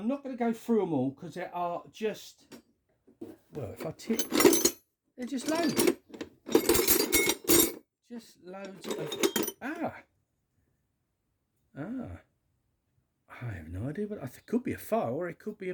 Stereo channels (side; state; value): both; identical; correlation 1.00